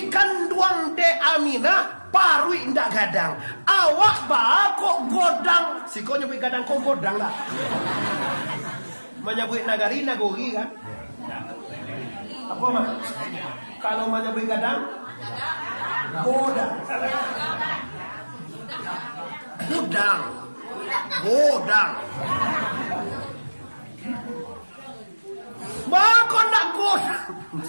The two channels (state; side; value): inverted; both; correlation -1.00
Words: kanduang de Aminah parui ndak gadang. Awak ba kok godang. Si kau nyebut gadang kok godang lah. Menyebut nagari nagori kan? Apa mah? Kalau menyebut gadang godang. Godang. Godang. Bako ndak godang.